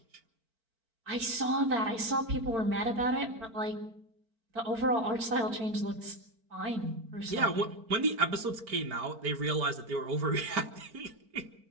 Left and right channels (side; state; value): left; late; 4.4 ms